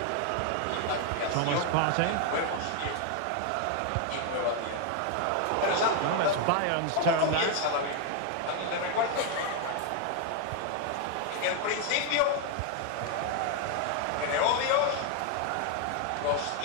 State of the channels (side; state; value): both; different; correlation 0.01